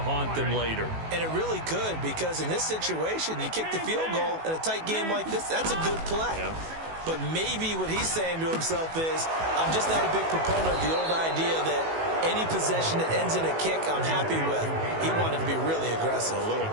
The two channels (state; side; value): late; left; 18 ms